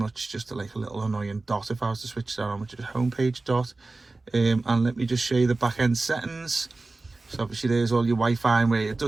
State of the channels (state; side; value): quieter; left; 3.3 dB